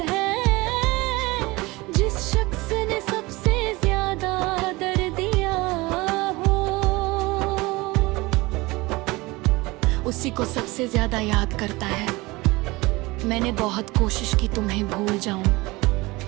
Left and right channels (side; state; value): left; quieter; 22.3 dB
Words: उसी को सबसे ज्यादा याद करता है। मैंने बहुत कोशिश की तुम्हें भूल जाऊं,